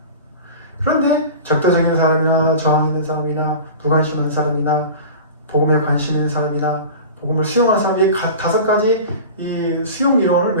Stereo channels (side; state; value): both; inverted; correlation -0.35